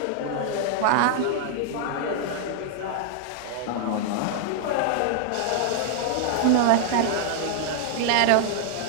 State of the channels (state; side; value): different; both; correlation -0.01